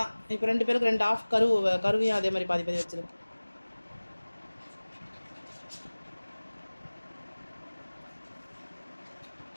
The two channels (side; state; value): both; inverted; correlation -1.00